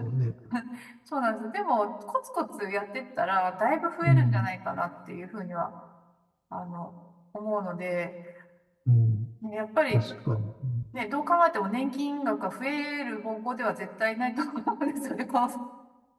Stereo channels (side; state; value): both; identical; correlation 1.00